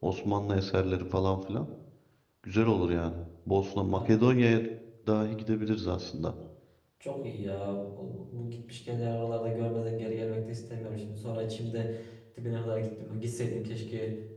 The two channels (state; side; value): identical; both; correlation 1.00